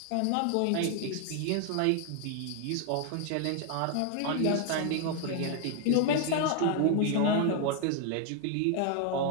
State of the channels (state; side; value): different; both; correlation 0.00